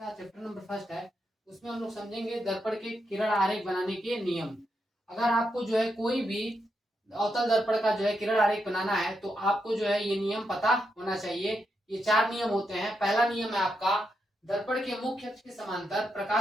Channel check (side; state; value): both; normal; correlation 0.83